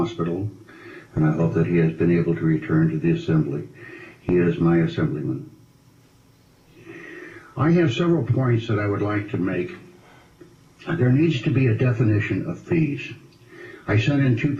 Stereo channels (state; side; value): identical; both; correlation 1.00